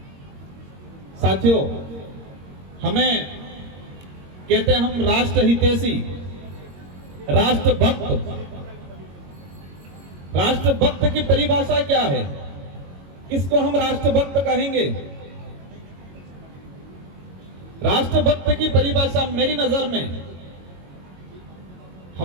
साथियों, हमें कहते हैं हम राष्ट्र हितैषी, राष्ट्रभक्त। राष्ट्रभक्त की परिभाषा क्या है? किसको हम राष्ट्रभक्त कहेंगे? राष्ट्रभक्त की परिभाषा मेरी नजर में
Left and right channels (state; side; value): late; left; 22 ms